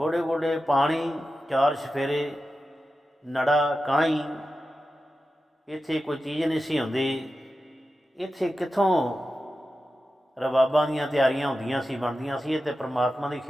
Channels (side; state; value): both; normal; correlation 0.92